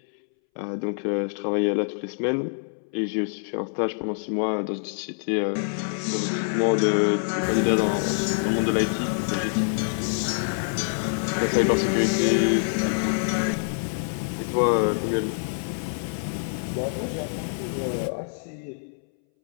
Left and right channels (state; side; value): silent; right; 61 dB below the other